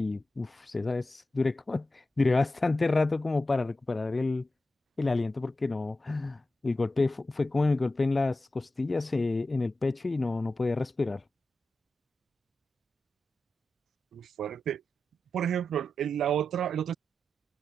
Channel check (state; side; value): normal; both; correlation 0.91